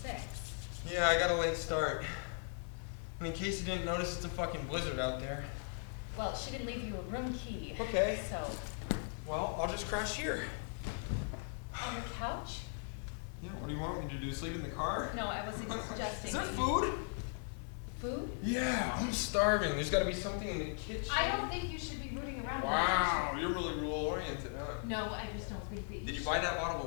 Yeah, I got a late start. And in case you didn't notice, it's a fucking blizzard out there. Well, she didn't leave you a room key. Okay. So. Well, I'll just crash here. On the couch? Yeah, what do you want me to do? Sleep in the car? No, I wasn't suggesting. Is there food? Food? Yeah, I'm starving. There's got to be something in the kitchen. I don't think you should be rooting around. Wow, you're really rule-oriented, huh? No, I just don't think that you Did you buy that bottle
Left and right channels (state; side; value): silent; right; 52 dB below the other